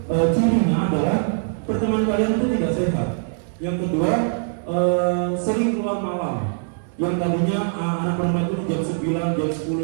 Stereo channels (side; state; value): left; silent; 64 dB below the other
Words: cirinya adalah pertemanan kalian itu tidak sehat. Yang kedua, sering keluar malam. Yang tadinya anak perempuan itu jam 9, jam